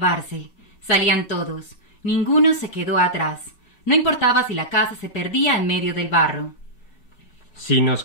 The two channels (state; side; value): late; right; 4.8 ms